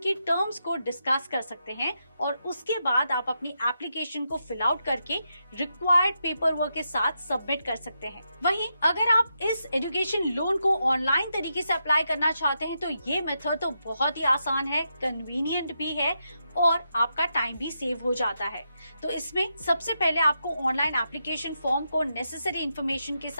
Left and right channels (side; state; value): both; inverted; correlation -0.84